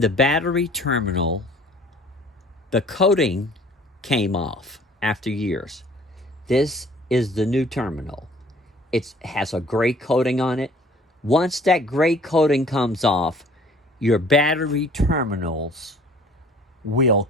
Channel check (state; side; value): normal; both; correlation 0.52